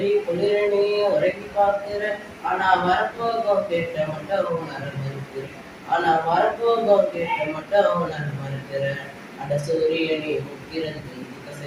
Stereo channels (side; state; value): both; identical; correlation 1.00